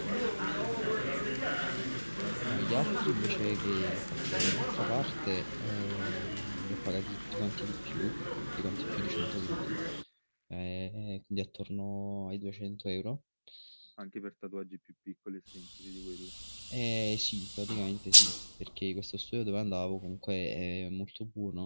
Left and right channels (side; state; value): both; inverted; correlation -1.00